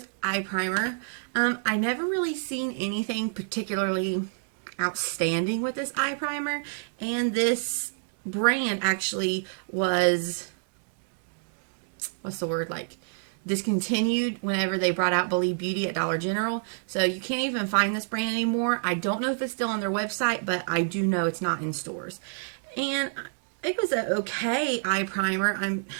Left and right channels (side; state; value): left; silent; digital silence